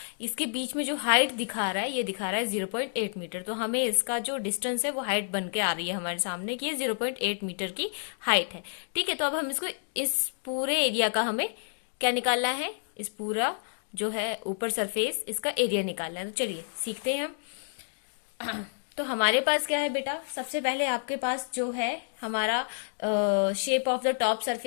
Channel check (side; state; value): right; silent; digital silence